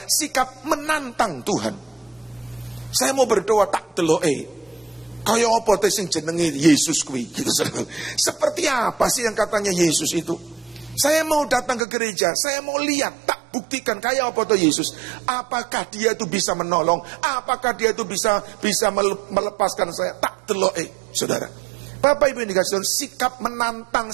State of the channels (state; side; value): drops out; left; at 11.8 s